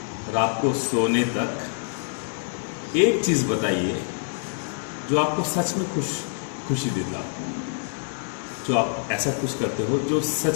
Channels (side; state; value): right; silent; digital silence